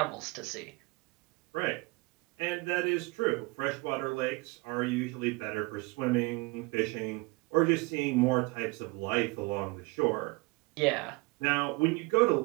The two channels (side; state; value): left; quieter; 25.0 dB